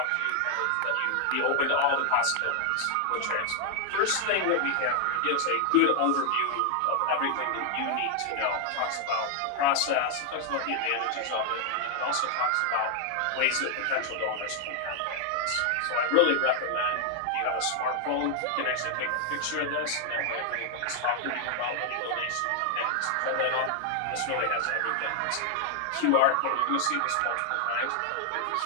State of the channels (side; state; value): both; different; correlation 0.00